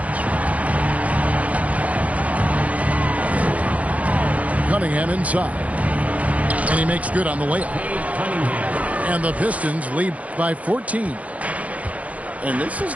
Cunningham inside. And he makes good on the layup. And the Pistons lead by 14. And this is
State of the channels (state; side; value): late; left; 0.068 ms